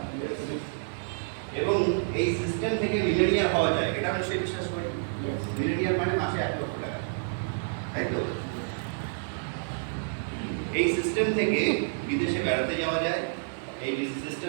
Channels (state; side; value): silent; left; digital silence